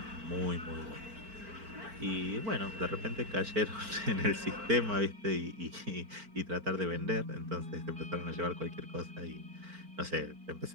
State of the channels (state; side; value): late; left; 4.5 ms